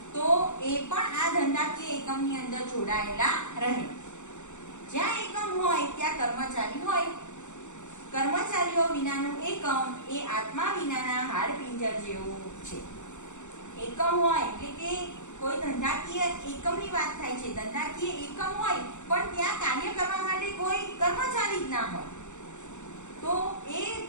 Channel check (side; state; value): right; late; 0.84 ms